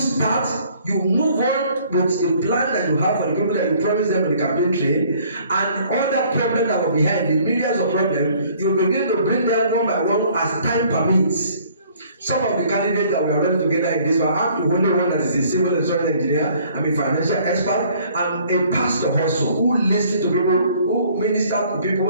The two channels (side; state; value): both; inverted; correlation -0.58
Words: start, you move on with the plan that you have for the people that you promise them in the campaign trail, and all that problem that were behind, the millions of problems, you begin to bring them one by one as time permits. Some of the candidates that we are running together in this, I'm the only one that is a civil insurance engineer, I'm a financial expert, I'm a pastor also who listens to people, who minister to